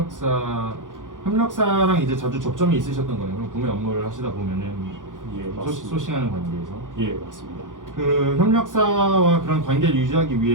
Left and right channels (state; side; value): late; left; 0.88 ms